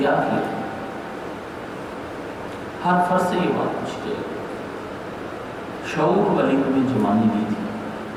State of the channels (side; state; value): both; identical; correlation 1.00